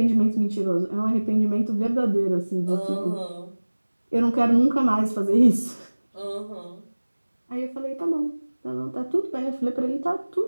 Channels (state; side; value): inverted; both; correlation -1.00